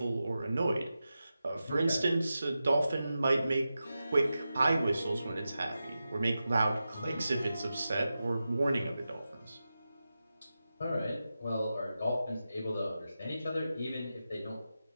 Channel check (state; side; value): inverted; both; correlation -0.92